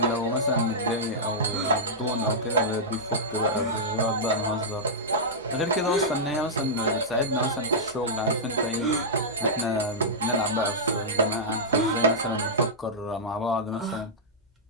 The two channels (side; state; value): both; normal; correlation -0.11